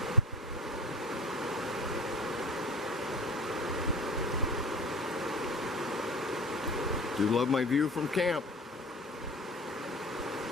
Do love my view from camp.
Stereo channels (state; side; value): normal; both; correlation 0.39